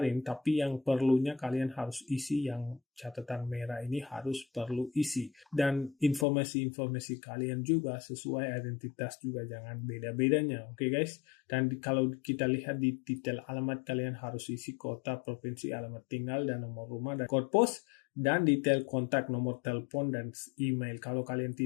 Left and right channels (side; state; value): right; drops out; at 6.2 s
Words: tapi yang perlunya kalian harus isi yang catatan merah ini harus perlu isi. Dan informasi-informasi kalian juga sesuai identitas juga, jangan beda-bedanya. Oke guys. Dan kalau kita lihat di detail alamat, kalian harus isi kota, provinsi, alamat tinggal, dan nomor rumah, dan kode pos, dan detail kontak, nomor telepon, dan email. Kalau kalian